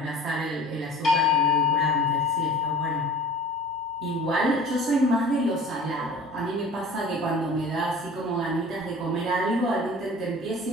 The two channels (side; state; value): both; normal; correlation 0.44